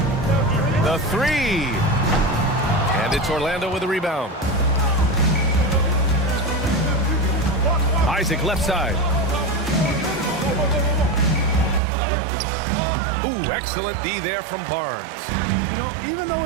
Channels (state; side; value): drops out; left; at 11.8 s